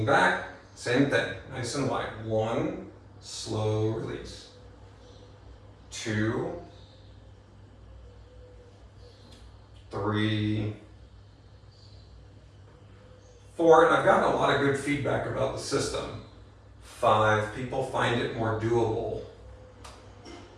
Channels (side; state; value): both; identical; correlation 1.00